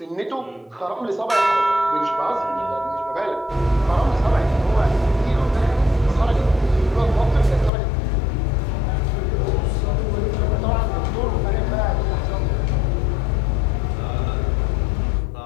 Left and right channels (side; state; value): right; drops out; at 7.7 s